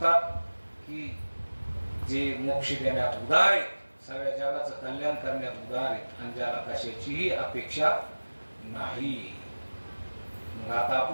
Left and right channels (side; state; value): both; inverted; correlation -1.00